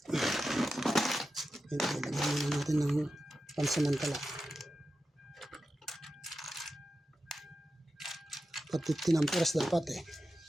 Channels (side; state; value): both; normal; correlation 0.91